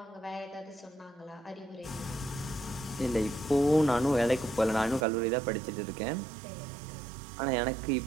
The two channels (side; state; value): left; drops out; at 5.1 s